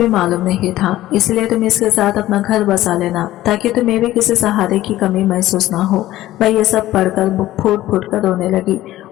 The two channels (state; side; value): quieter; right; 15.1 dB